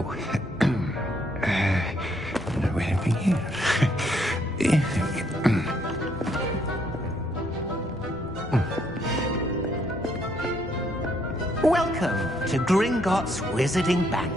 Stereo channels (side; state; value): both; normal; correlation 0.71